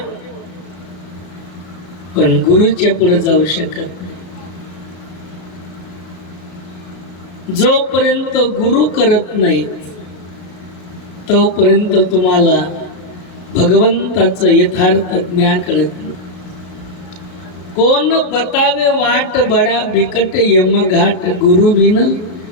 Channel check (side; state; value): right; late; 33 ms